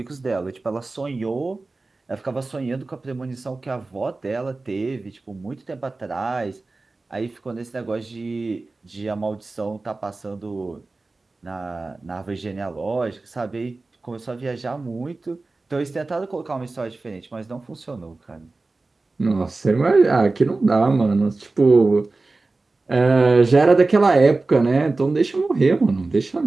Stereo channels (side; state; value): left; quieter; 3.4 dB